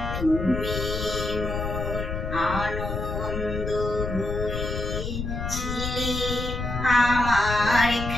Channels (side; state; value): left; noise; rumble, 4 dB below the sound